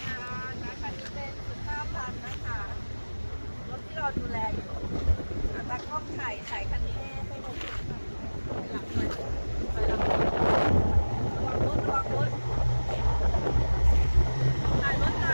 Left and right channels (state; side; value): inverted; both; correlation -1.00